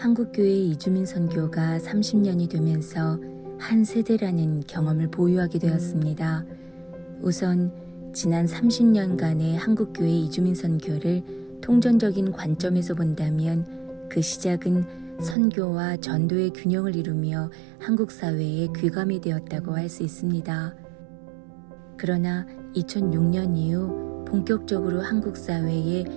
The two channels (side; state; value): left; drops out; at 15.4 s